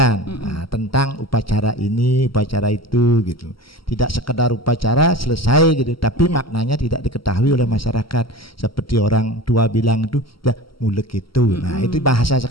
tentang upacara ini, upacara itu gitu. Tidak sekedar upacara selesai gitu, tapi maknanya tidak diketahui oleh masyarakat. Seperti orang tua bilang itu, ya mulek itu. Nah itu bahasa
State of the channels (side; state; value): right; late; 0.74 ms